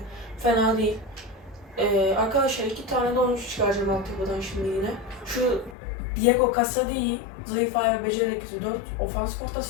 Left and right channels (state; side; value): drops out; right; at 5.8 s